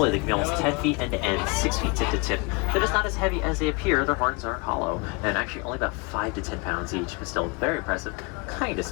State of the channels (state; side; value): quieter; right; 29.5 dB